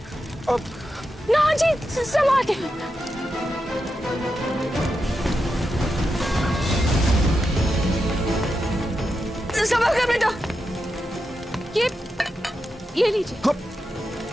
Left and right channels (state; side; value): normal; both; correlation 0.88